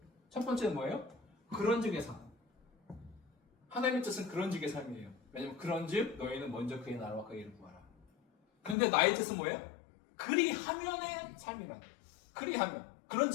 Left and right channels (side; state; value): right; drops out; at 8.8 s